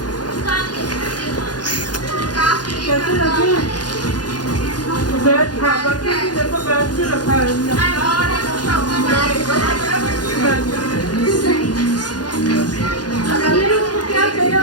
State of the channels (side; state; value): right; late; 0.69 ms